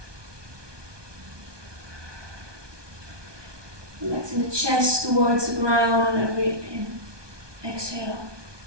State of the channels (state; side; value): late; left; 1.2 ms